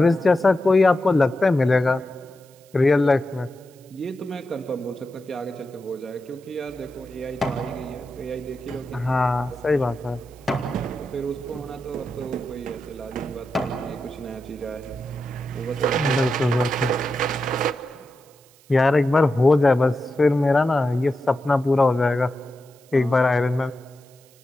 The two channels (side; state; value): right; noise; hiss, 29 dB below the sound